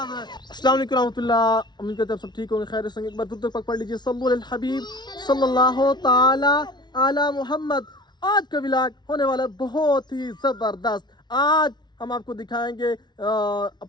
रहे हैं। अस्सलाम वालेकुम रहमतुल्लाह, उम्मीद करते हैं आप सब ठीक होंगे, खैर से। एक बार दूर तक पढ़ लीजिए सल्लल्लाहु अलैहि हबीब सल्लल्लाहु ताला अला मोहम्मद। आज का व्लॉग होने वाला है बहुत ही जबरदस्त। आज हम आपको दिखाएंगे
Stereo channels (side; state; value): right; late; 0.20 ms